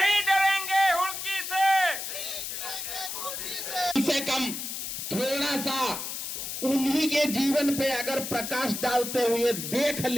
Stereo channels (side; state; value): left; noise; hiss, 5 dB below the sound